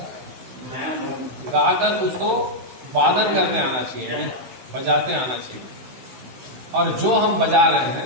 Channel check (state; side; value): late; left; 16 ms